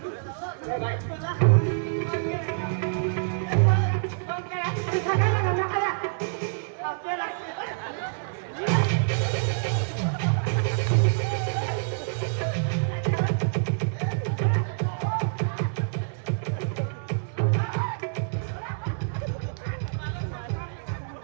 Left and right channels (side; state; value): left; silent; digital silence